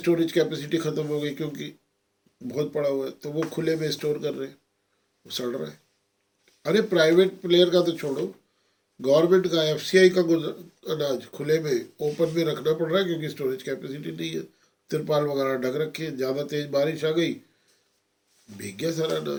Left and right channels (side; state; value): both; identical; correlation 1.00